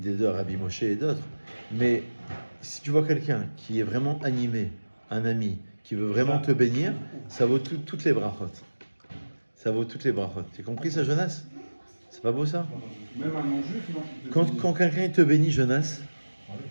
deux, Rabbi Moshe et d'autres. Mais si tu vois quelqu'un qui est vraiment animé, un ami, qui veut vraiment te bénir, ça vaut toutes les brachot. Ça vaut toutes les brachot. Tu as compris ça, Jonas? C'est pas beau ça? Même un non-juif, non? Quand quelqu'un te bénit, Jonas,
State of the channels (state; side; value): inverted; both; correlation -1.00